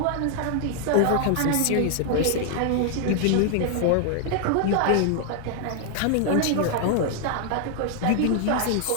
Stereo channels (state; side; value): different; both; correlation 0.00